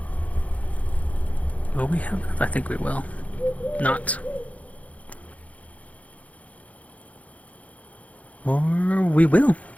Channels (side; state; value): right; late; 0.068 ms